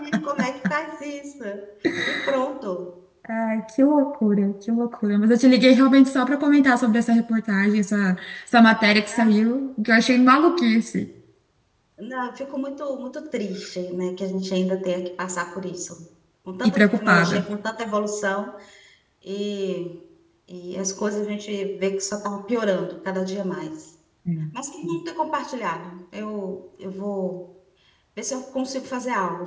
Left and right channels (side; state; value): both; identical; correlation 1.00